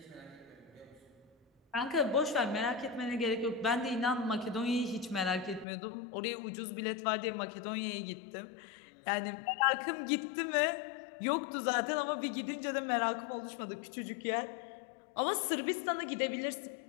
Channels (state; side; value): drops out; right; at 5.7 s